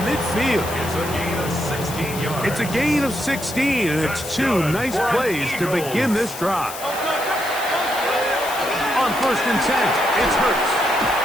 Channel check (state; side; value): noise; left; hiss, 11 dB below the sound